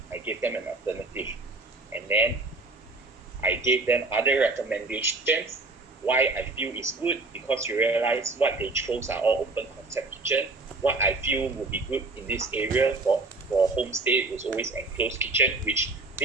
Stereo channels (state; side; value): quieter; left; 3.2 dB